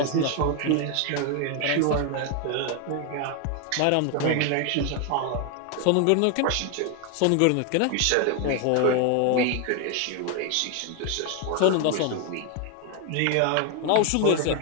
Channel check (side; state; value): both; different; correlation 0.01